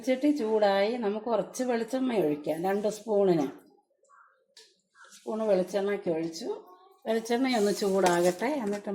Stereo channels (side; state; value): both; identical; correlation 1.00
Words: ചൂടായി നമുക്ക് കുറച്ച് വെളിച്ചെണ്ണ ഒഴിക്കാം. 2 സ്പൂണ് വെളിച്ചെണ്ണയ്ക്ക് ഒഴിച്ചു. വെളിച്ചെണ്ണയൊന്ന് ചൂടാകട്ടെ, എന്നിട്ട്